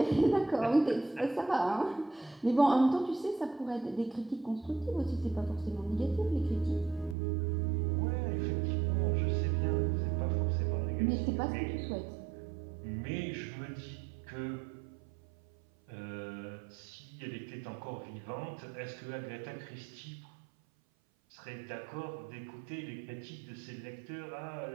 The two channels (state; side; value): drops out; left; at 7.2 s